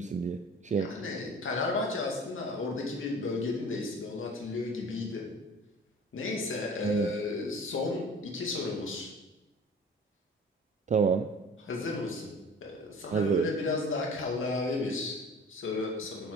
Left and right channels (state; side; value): normal; both; correlation 0.43